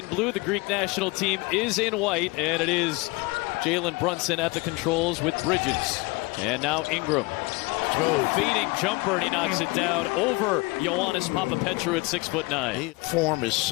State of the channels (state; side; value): quieter; right; 25.1 dB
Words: blue. The Greek national team is in white, and it is Jalen Brunson at the controls with Bridges. And now Ingram. Fading jumper, and he knocks it down over Ioannis Papapetrou at 6'9". Form is